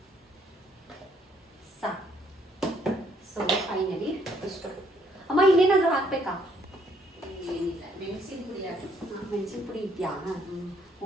ಸಾಕು. ಸೊ ಫೈನಲಿ ಇಷ್ಟು. ಅಮ್ಮ ಇನ್ನೇನಾದ್ರೂ ಹಾಕ್ಬೇಕಾ? ಏನಿಲ್ಲ, ಮೆಣಸಿನ ಪುಡಿ ಇದೆಯಾ?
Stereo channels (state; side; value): normal; both; correlation 0.67